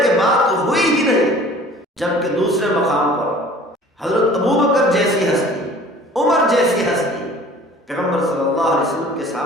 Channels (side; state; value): both; normal; correlation 0.48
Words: کہ بات ہوئی ہی نہیں۔ جبکہ دوسرے مقام پر حضرت ابوبکر جیسی ہستی، عمر جیسی ہستی پیغمبر صلی اللہ علیہ وسلم کے